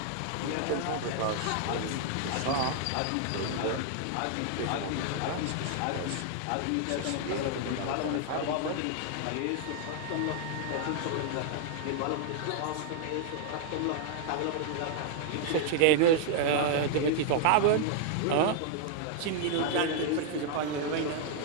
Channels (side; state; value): both; different; correlation 0.00